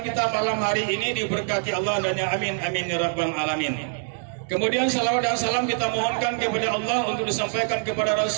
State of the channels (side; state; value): left; silent; 61 dB below the other